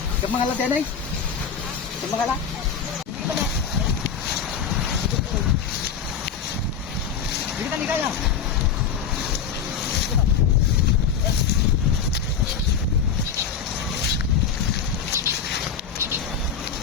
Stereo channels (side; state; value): right; quieter; 6.9 dB